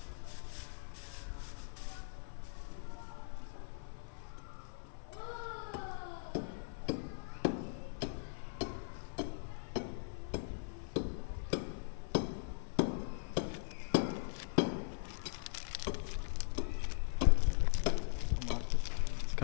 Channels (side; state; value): right; silent; 51 dB below the other